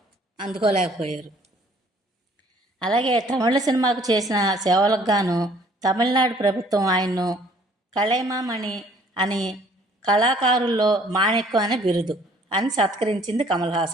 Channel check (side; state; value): both; normal; correlation 0.58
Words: అందుకోలేకపోయారు. అలాగే తమిళ సినిమాకు చేసిన సేవలకు గాను తమిళనాడు ప్రభుత్వం ఆయన్ను కళైమామణి అని, కళాకారుల్లో మాణిక్యం అనే బిరుదు అని సత్కరించింది కమల్